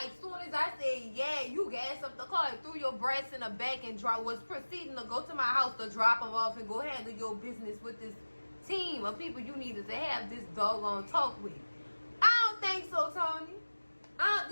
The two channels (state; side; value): inverted; both; correlation -1.00